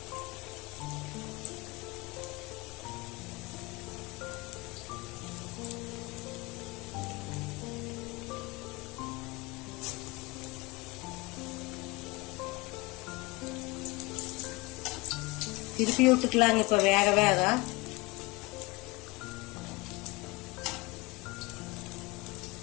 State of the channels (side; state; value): right; quieter; 23.8 dB